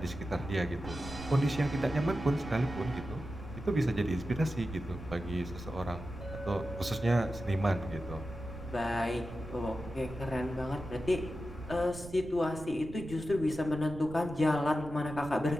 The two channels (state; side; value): noise; right; rumble, 13 dB below the sound